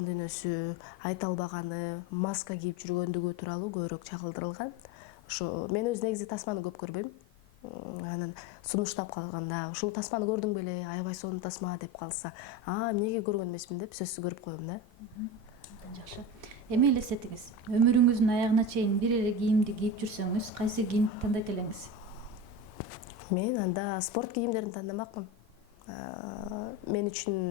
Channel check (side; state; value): both; normal; correlation 0.24